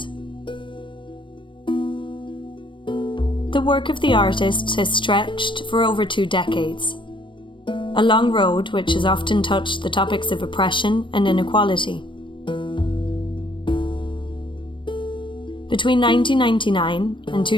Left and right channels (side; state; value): right; late; 0.24 ms